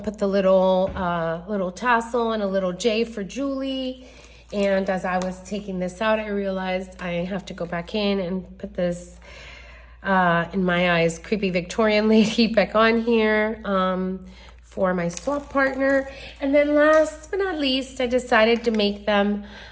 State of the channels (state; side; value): identical; both; correlation 1.00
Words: put the little tassel and a little J for Julie. And as I was taking this out, I realized I have to go back in and put this, in my eyes, creepy Victorian lady back on here for my swap partner. And then last but not least, I decided to make them